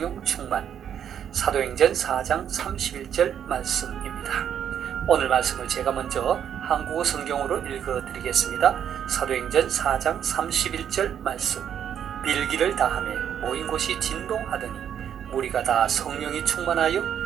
충만 사도행전 4장 31절 말씀입니다. 오늘 말씀을 제가 먼저 한국어 성경으로 읽어드리겠습니다. 사도행전 4장 31절 말씀. 빌기를 다하며 모인 곳이 진동하더니 무리가 다 성령이 충만하여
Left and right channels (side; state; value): left; quieter; 9.0 dB